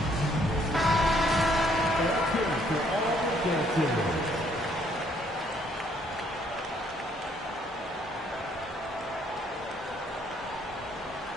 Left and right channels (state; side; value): normal; both; correlation 0.66